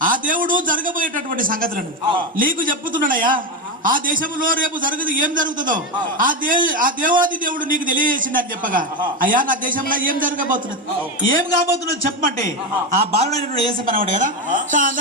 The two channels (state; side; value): normal; both; correlation 0.13